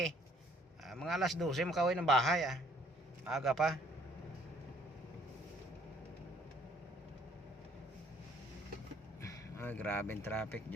Mga alas 12 makauwi ng bahay. Aga pa. Ay, grabe yung traffic,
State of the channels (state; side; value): normal; both; correlation 0.61